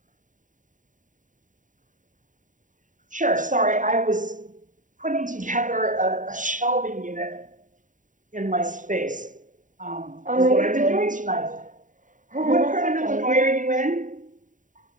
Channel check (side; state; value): left; late; 0.37 ms